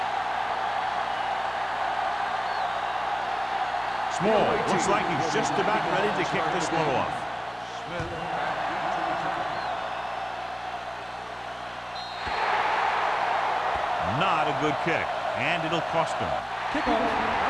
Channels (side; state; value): both; identical; correlation 1.00